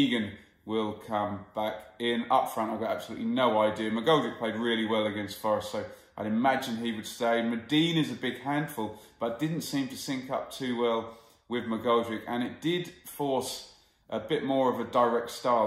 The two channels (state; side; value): identical; both; correlation 1.00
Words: will come back in. Up front, I've got absolutely no idea. McGoldrick played really well against Forest, so I'd imagine he would stay. Medine is a big handful, but didn't seem to sync up too well with McGoldrick, and it did force a bit more of a direct